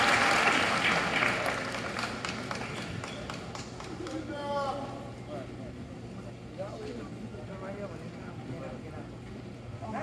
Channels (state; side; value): identical; both; correlation 1.00